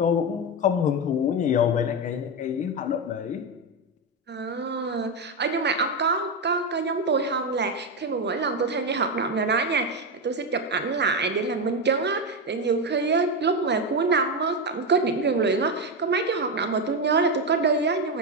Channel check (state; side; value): normal; both; correlation 0.10